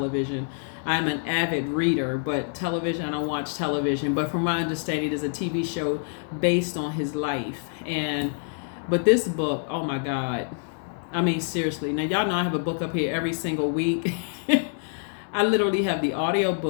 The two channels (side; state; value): right; silent; digital silence